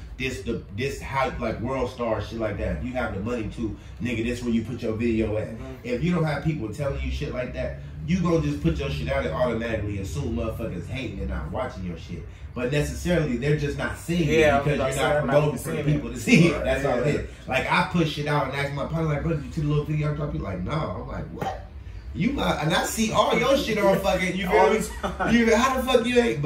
This how, like World Star shit like that. If you have the money to, nigga, this where you put your video at. If you don't have people telling you shit like that, you gonna just put your shit out and automatically assume motherfuckers hating and not watching your shit. But necessarily, they're just not seeing it because you're not promoting for the people to see it. That's all it is. Like, I push shit out and ask my partner, like, bro, did you see the little video I dropped? You like, no. I'm like, what? You might, and I see all your shit on fucking, you feel me? You, how the fuck you ain't?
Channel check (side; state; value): both; identical; correlation 1.00